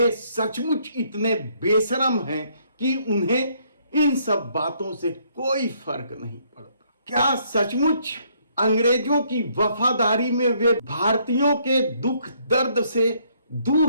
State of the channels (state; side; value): inverted; both; correlation -0.68